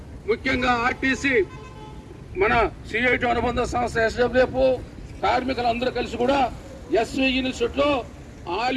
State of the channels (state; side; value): identical; both; correlation 1.00